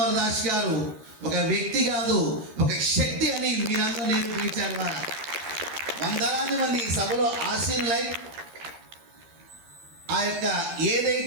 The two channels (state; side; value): late; left; 13 ms